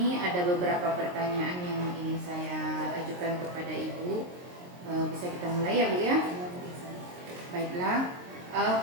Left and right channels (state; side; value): late; left; 22 ms